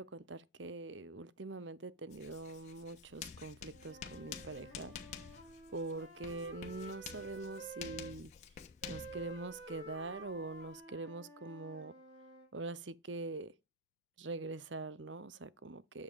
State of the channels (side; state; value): both; normal; correlation 0.03